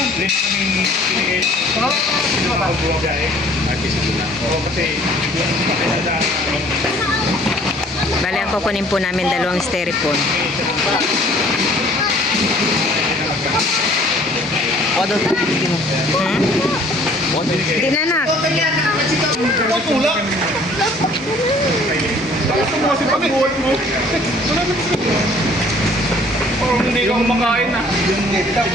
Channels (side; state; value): both; normal; correlation 0.55